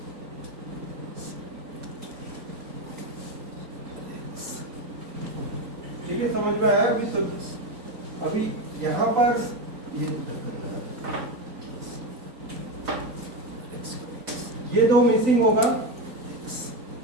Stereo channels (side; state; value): left; late; 3.9 ms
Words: ठीक है, समझ में आया अभी? तो अभी यहाँ पर ये दो मिसिंग होगा,